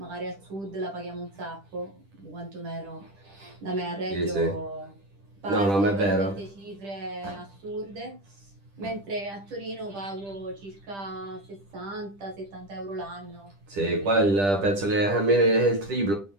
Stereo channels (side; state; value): left; late; 10 ms